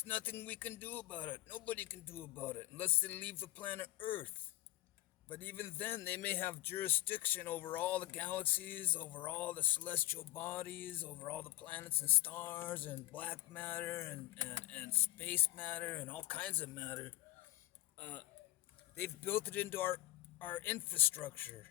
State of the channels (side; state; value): right; quieter; 17.2 dB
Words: nothing we can do about it. Nobody can do about it unless they leave the planet Earth. But even then, they may have jurisdiction over all the galaxies, over all the celestial bodies, over all the planets and stars, and black matter, and space matter, and all kinds of matter. They've built it into our infrastructure.